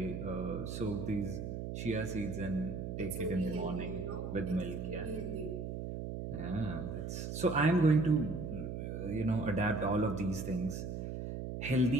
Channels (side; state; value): right; noise; hum, 5 dB below the sound